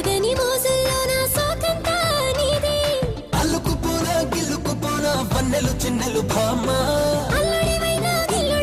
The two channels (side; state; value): both; identical; correlation 1.00